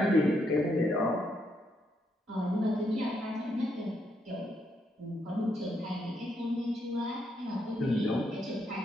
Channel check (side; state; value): both; normal; correlation 0.77